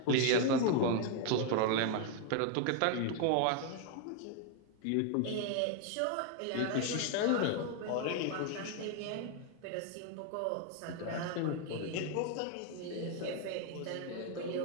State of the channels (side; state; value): both; different; correlation 0.00